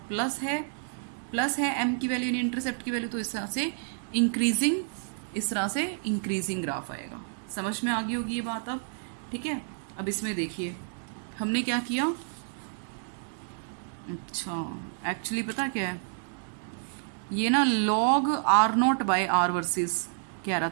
प्लस है एम की वैल्यू यानी इंटरसेप्ट की वैल्यू, तो इस तरह से इंक्रीजिंग ग्राफ आएगा। समझ में आ गई होगी ये बात अब, ठीक है। अब इसमें देखिए हमने क्या किया, अच्छा एक्चुअली पता क्या है, ये ना log R note by R versus कह रहा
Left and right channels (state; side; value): silent; left; digital silence